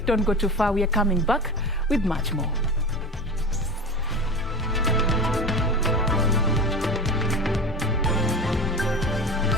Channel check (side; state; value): both; normal; correlation 0.30